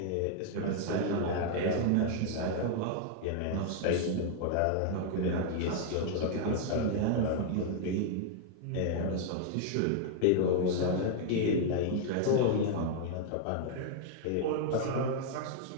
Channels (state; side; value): different; both; correlation 0.00